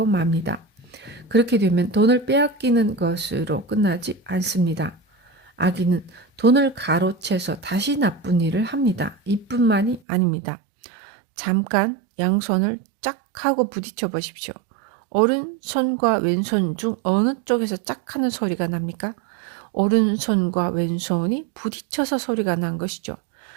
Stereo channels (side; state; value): left; drops out; at 10.0 s